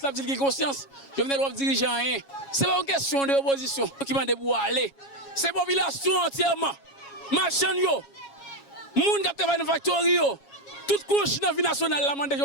là dit qui conscience. Jovenel doit diriger rien. C'est pas une question de opposition qui m'a pour aller. C'est la population entièrement. Marchand yo. Moun qui travaille dans factory yo. Toute couche dans la vie nationale, la mande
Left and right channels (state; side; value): late; right; 7.3 ms